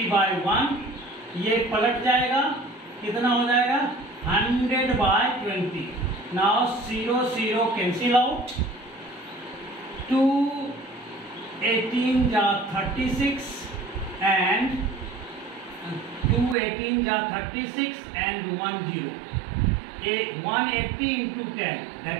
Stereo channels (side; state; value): left; drops out; at 16.6 s